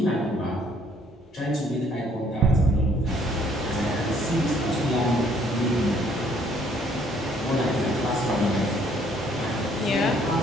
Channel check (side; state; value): both; normal; correlation 0.63